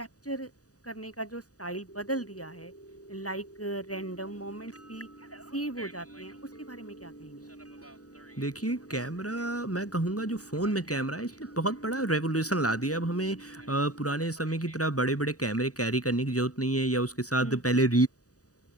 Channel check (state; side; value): late; right; 0.67 ms